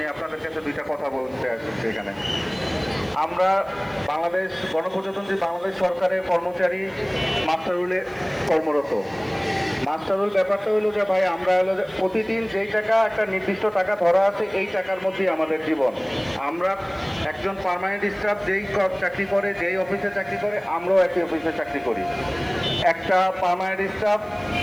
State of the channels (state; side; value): noise; right; hiss, 30 dB below the sound